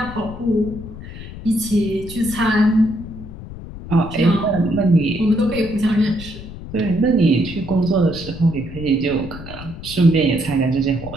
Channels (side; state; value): left; noise; rumble, 12 dB below the sound